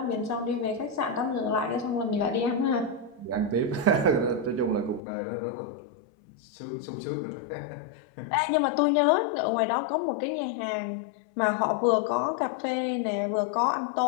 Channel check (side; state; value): right; drops out; at 5.0 s